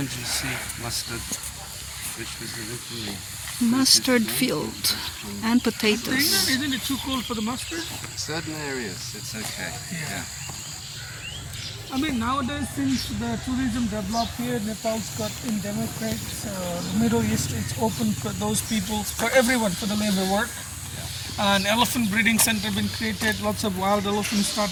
you see mustard, which was originally Mustard field and potatoes. Isn't it too cold for the mustard? certain areas it's okay. Yeah. I mean, nowadays since the tourism developed here, Nepal's got in democrats, the Middle East, it's open for those people, for everyone, for the labor work. An elephant breeding center been created, lots of wild elephants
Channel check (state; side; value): identical; both; correlation 1.00